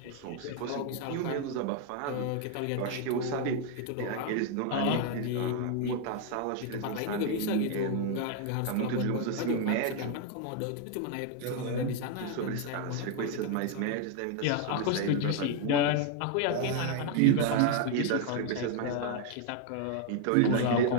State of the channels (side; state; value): both; different; correlation 0.01